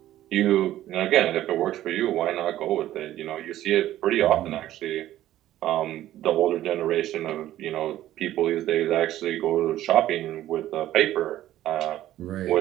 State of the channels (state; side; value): quieter; left; 13.6 dB